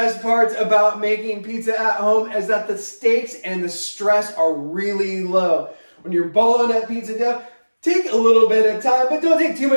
parts about making pizza at home is that the stakes and the stress are really low. When you're balling up pizza dough, take a little bit of time, but don't take too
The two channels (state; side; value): inverted; both; correlation -1.00